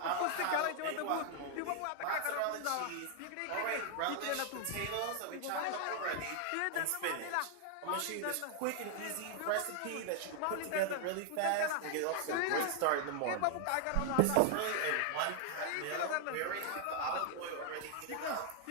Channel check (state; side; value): different; both; correlation 0.00